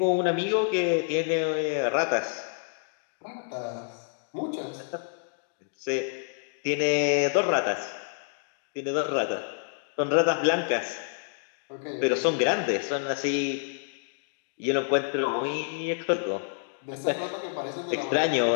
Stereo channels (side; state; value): right; silent; digital silence